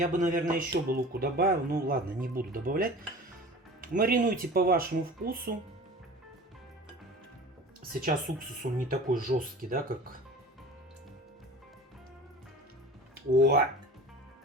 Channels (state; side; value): normal; both; correlation 0.39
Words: бы, наверное, еще бы луку добавил. Ну, ладно, не буду добавлять. Маринуйте по вашему вкусу. Сейчас уксус, он не такой жесткий, да, как... О!